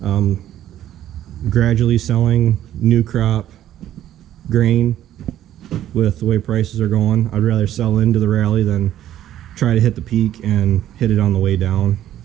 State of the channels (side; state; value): left; quieter; 12.1 dB